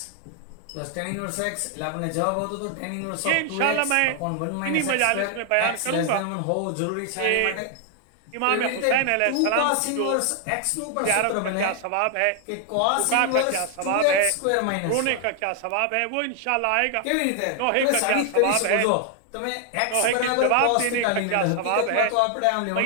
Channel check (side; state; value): both; different; correlation 0.00